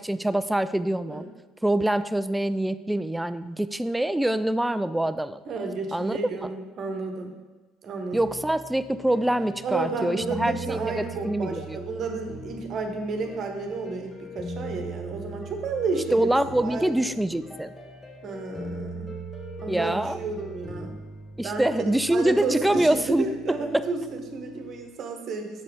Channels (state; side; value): normal; both; correlation 0.89